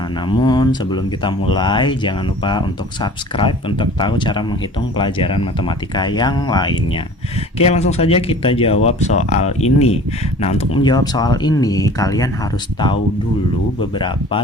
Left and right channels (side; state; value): both; normal; correlation 0.44